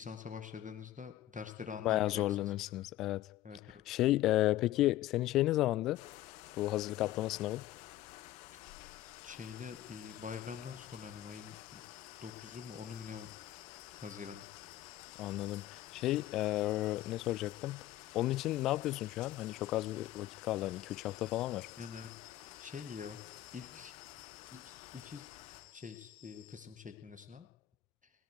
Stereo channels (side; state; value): right; quieter; 14.4 dB